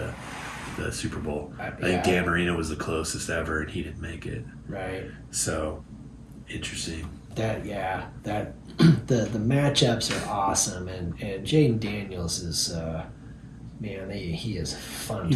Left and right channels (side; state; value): both; identical; correlation 1.00